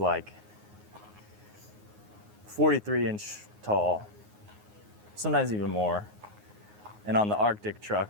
like 43-inch tall, sometimes even more. And on the Arctic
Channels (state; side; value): late; left; 9.6 ms